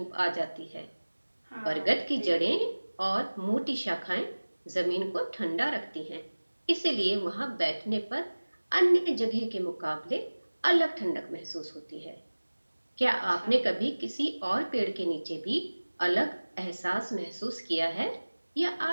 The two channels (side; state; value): both; inverted; correlation -1.00